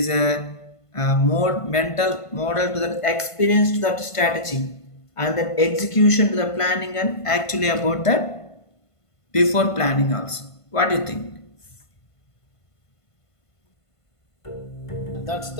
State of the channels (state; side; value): late; right; 1.5 ms